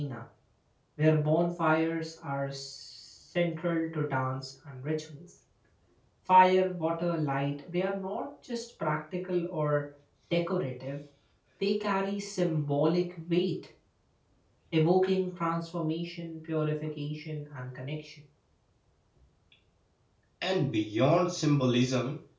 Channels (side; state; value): both; identical; correlation 1.00